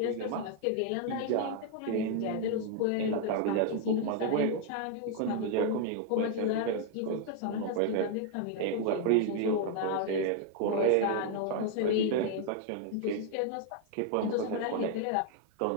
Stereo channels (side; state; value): both; different; correlation 0.00